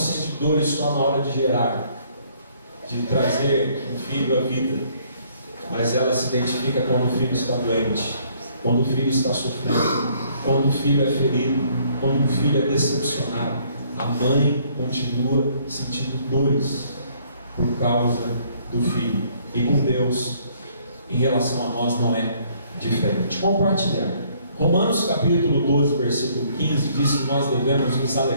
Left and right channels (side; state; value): both; inverted; correlation -0.63